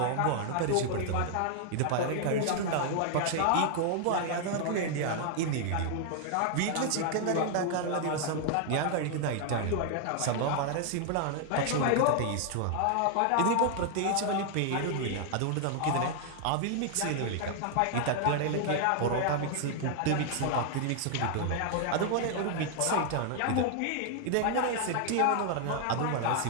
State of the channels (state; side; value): different; both; correlation 0.00